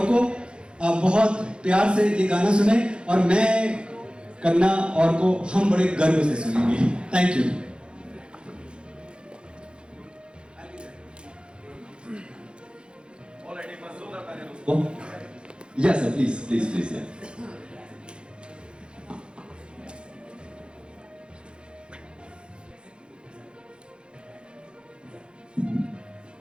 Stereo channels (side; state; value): left; late; 0.054 ms